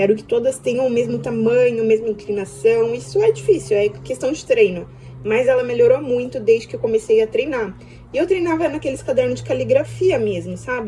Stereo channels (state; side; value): identical; both; correlation 1.00